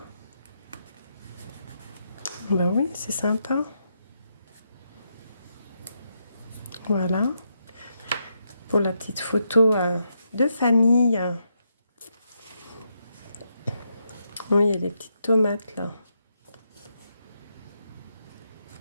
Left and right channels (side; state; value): both; inverted; correlation -0.81